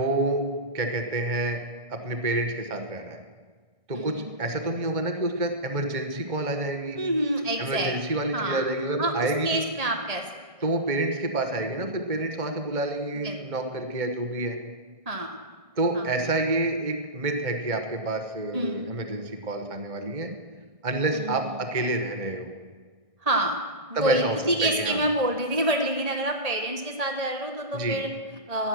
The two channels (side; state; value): left; late; 1.6 ms